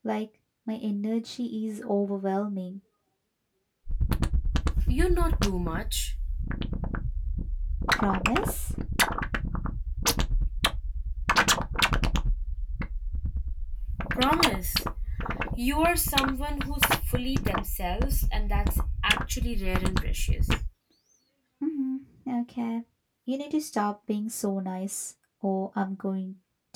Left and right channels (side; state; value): both; identical; correlation 1.00